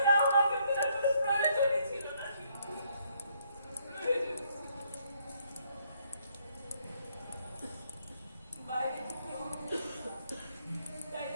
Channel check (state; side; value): inverted; both; correlation -0.70